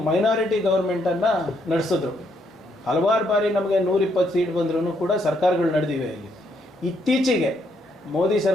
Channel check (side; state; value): both; normal; correlation 0.73